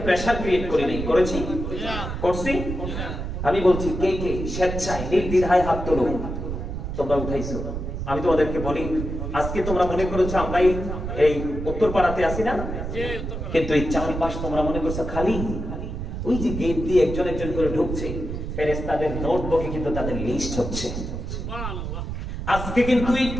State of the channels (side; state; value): right; noise; rumble, 5 dB below the sound